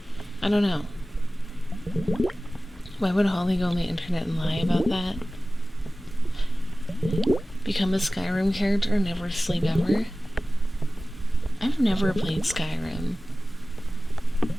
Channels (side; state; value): both; normal; correlation 0.96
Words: I don't know. Why would Holly go on the internet and lie about that? Become a Skyrim character and never sleep ever? I've never played Skyrim.